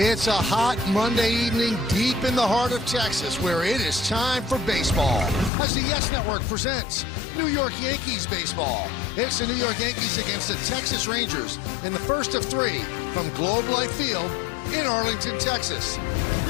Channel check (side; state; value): right; drops out; at 5.5 s